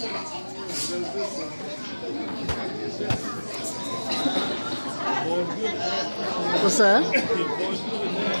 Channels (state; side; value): inverted; both; correlation -1.00